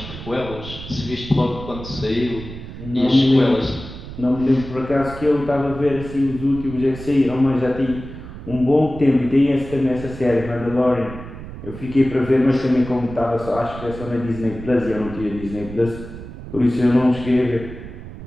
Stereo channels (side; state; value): right; noise; rumble, 12 dB below the sound